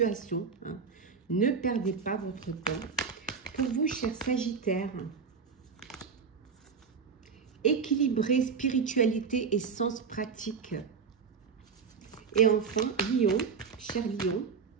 Hein. Ne perdez pas votre temps. Pour vous, cher Sagittaire, équilibrez spiritualité et sens pratique. Et enfin, Lion, cher Lion,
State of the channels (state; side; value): quieter; left; 5.8 dB